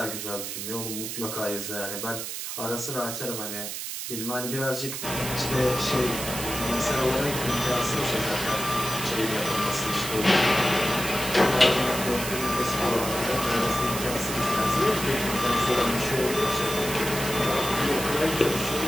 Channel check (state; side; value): noise; right; hiss, 6 dB below the sound